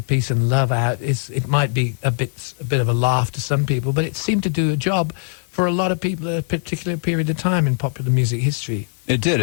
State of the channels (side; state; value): right; silent; 59 dB below the other